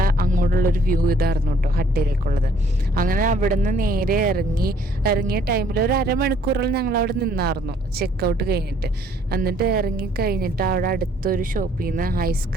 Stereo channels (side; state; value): both; normal; correlation 0.62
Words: അങ്ങോട്ടുള്ളൊരു വ്യൂ ഇതായിരുന്നു കേട്ടോ ഹട്ടിലേക്കുള്ളത്. അങ്ങനെ അവിടെ നിന്ന് നേരെ ഇറങ്ങിയ ടൈമിൽ ഒരു അരമണിക്കൂറോളം ഞങ്ങൾ അവിടെ നിന്നായിരുന്നു ചെക്കൗട്ട് കഴിഞ്ഞിട്ട്. എന്നിട്ട് ഇറങ്ങി കഴിഞ്ഞിട്ട് അവിടെ അടുത്തൊരു ഷോപ്പിൽ നിന്ന്